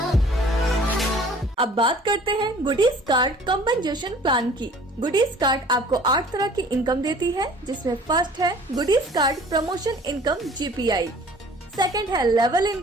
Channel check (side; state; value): both; normal; correlation 0.50